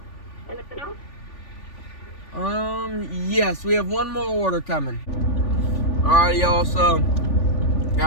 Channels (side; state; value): right; late; 3.4 ms